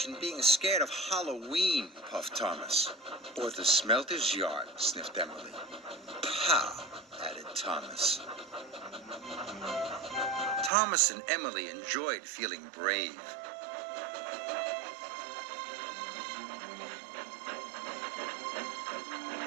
being scared of Halloween," puffed Thomas. "Or the smelter's yard," sniffed Emily. "Pow," added Thomas. Thomas and Emily enjoyed feeling brave.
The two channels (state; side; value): drops out; left; at 10.7 s